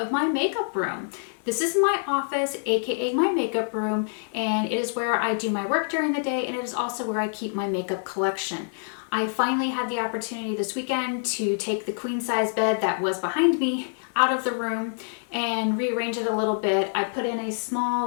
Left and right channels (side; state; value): right; silent; digital silence